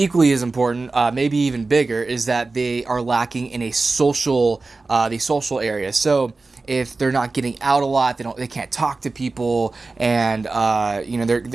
as important, maybe even bigger, is that they are lacking in a social, the social area. So if they're not getting out a lot, they can't talk to people, and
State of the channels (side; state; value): left; quieter; 3.6 dB